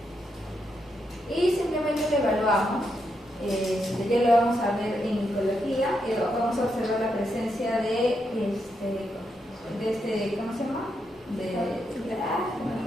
Y simplemente lo evaluamos. Ya lo vamos a ver en micología. Vamos a observar la presencia de ¿cómo se llama?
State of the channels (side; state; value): both; normal; correlation 0.82